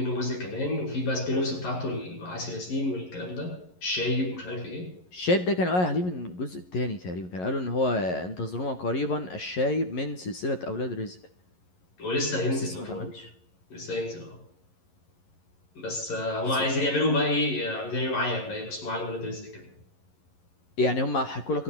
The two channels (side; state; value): right; late; 11 ms